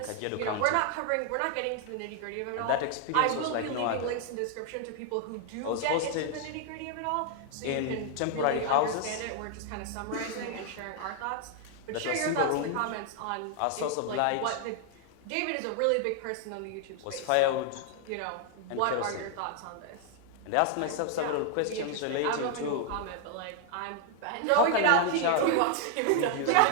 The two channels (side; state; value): both; different; correlation 0.00